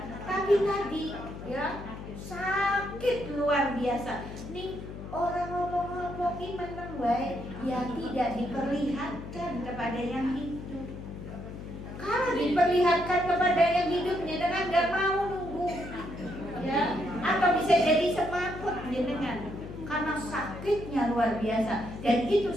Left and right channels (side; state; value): left; noise; hum, 11 dB below the sound